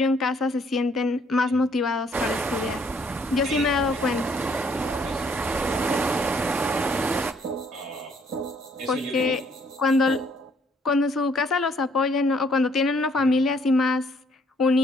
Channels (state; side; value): normal; both; correlation 0.65